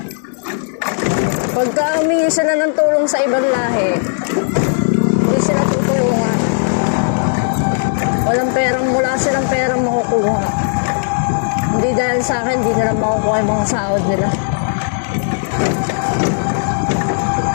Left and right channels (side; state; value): right; silent; digital silence